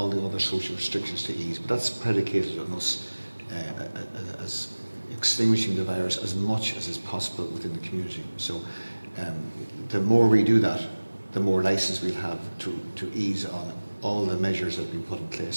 the other social restrictions to ease. But that's predicated on us as extinguishing the virus as much as is possible within the community. So the more we do that, the more license we'll have to ease on all the measures that have been put in place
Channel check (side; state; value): both; inverted; correlation -1.00